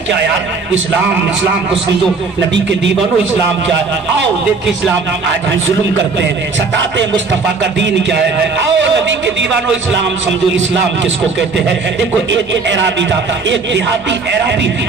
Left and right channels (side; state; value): left; quieter; 4.3 dB